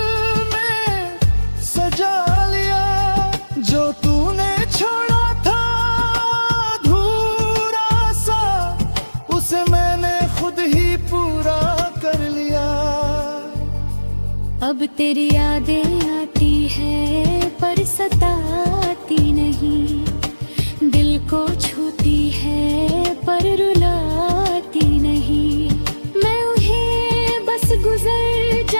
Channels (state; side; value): inverted; both; correlation -1.00